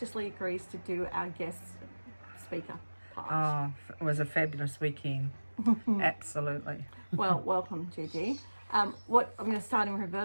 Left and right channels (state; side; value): inverted; both; correlation -1.00